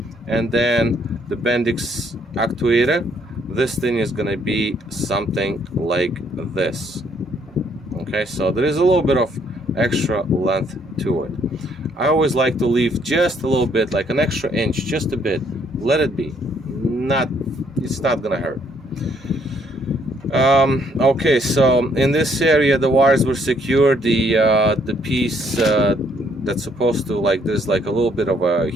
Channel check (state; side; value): normal; both; correlation 0.67